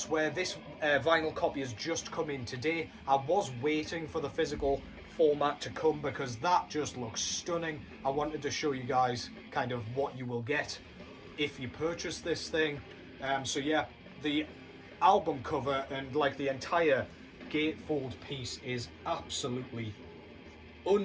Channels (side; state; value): both; identical; correlation 1.00